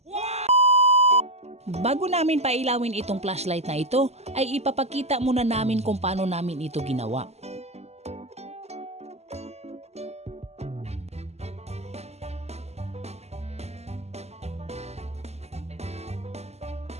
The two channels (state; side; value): late; left; 0.31 ms